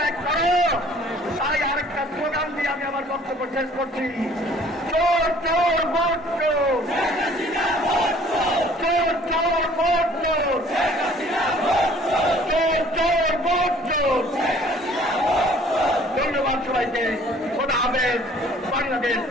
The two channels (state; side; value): normal; both; correlation 0.54